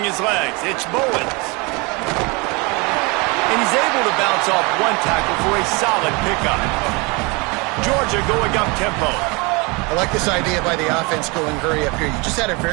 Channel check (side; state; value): left; quieter; 28.1 dB